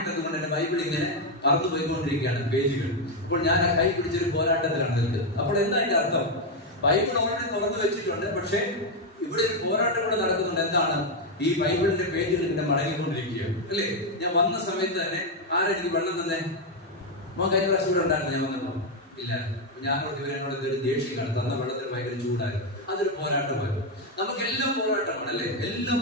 ഇട്ടത് കൊണ്ട് എന്റെ ബൈബിൾ ഇങ്ങനെ പറന്നു പോയിക്കൊണ്ടിരിക്കുകയാണ് പേജുകൾ. അപ്പോൾ ഞാൻ ആ കൈ പിടിച്ചൊരു പോരാട്ടത്തിലാണ് നിൽക്കുന്നത്. അപ്പോൾ എന്താ അതിന്റെ അർത്ഥം? ബൈബിൾ ഓൾറെഡി തുറന്നു വെച്ചിട്ടുണ്ട്, പക്ഷെ ഇവിടെ ഒരു പോരാട്ടം കൂടെ നടക്കുന്നുണ്ട്. എന്താണ്? ഈ ബൈബിളിന്റെ പേജുകൾ ഇങ്ങനെ മടങ്ങിക്കൊണ്ടിരിക്കുകയാണ്, അല്ലേ? ഞാൻ വന്ന സമയത്ത് തന്നെ ആരെനിക്ക് വെള്ളം തന്നെ കഴിഞ്ഞ പ്രാവശ്യം ഇവിടെ ഉണ്ടായിരുന്നു. ഞാൻ വന്നപ്പോ ഇല്ല, ഞാനോട് ഇവരോട് ഇതൊരു ദേഷ്യമാണ്, തന്ന വെള്ളത്തിന് ഭയങ്കര ചൂടായിരുന്നു. അതൊരു പോരാട്ടമായിരുന്നു. നമുക്കെല്ലാം പോരാട്ടമാണ്, അല്ലെ? എല്ലാം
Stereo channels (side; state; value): both; normal; correlation 0.04